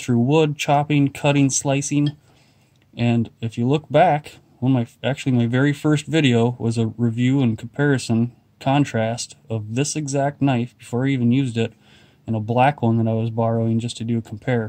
wood, chopping, cutting, slicing. And if you look back, my very first video was a review and comparison contrast of this exact knife before I even used it, and a black one that I was borrowing just to do a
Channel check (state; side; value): identical; both; correlation 1.00